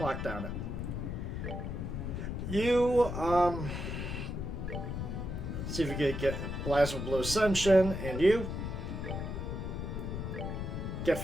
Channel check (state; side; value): noise; left; rumble, 4 dB below the sound